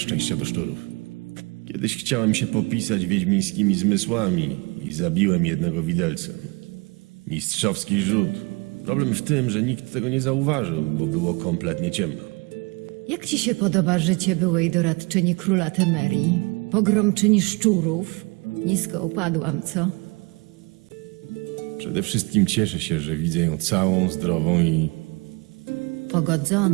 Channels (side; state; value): left; quieter; 28.3 dB